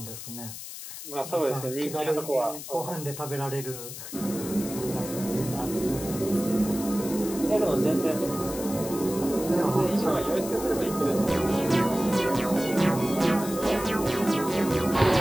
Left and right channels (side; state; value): left; noise; hiss, 11 dB below the sound